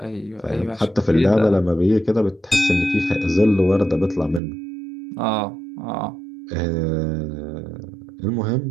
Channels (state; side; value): drops out; left; at 4.4 s